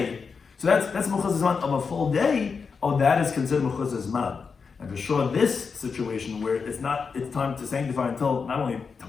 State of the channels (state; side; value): quieter; right; 5.4 dB